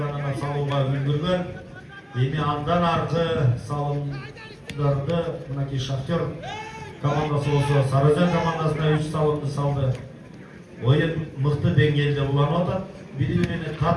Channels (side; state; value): both; identical; correlation 1.00